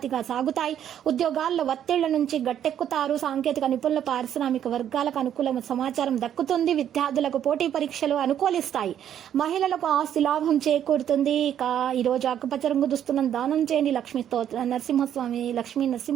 సాగుతాయి. ఉద్యోగాల్లో ఒత్తిళ్ల నుంచి గట్టెక్కుతారు. సాంకేతిక నిపుణుల పారిశ్రామిక వర్గాలకు అనుకూల సమాచారం దక్కుతుంది. విద్యార్థులకు పోటీ పరీక్షలు అనుకూలిస్తాయి. మహిళలకు ఆస్తి లాభం చేకూరుతుంది. ఇక ఈ రోజు ఆకుపచ్చ రంగు దుస్తులను దానం చేయండి. లక్ష్మీ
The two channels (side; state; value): left; quieter; 10.0 dB